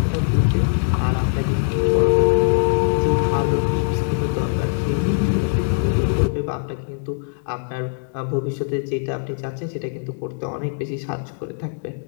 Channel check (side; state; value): right; silent; digital silence